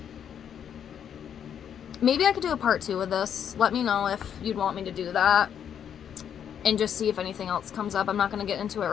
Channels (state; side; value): quieter; right; 8.7 dB